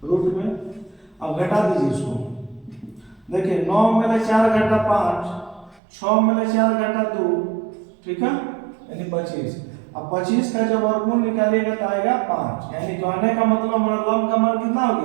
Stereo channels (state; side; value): drops out; left; at 5.8 s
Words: रूट में। अब घटा दीजिए इसको, देखिए 9 में ले 4 घटा 5, 6 में ले 4 घटा 2, ठीक है, यानी 25। अब 25 का जब वर्गमूल निकालिएगा तो आएगा 5, यानी कहने का मतलब हमारा लंब का मान कितना हो